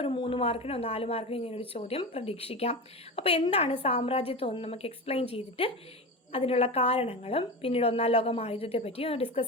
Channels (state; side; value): normal; both; correlation 0.25